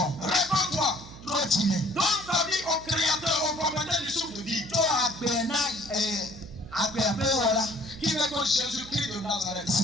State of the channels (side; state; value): right; noise; hum, 17 dB below the sound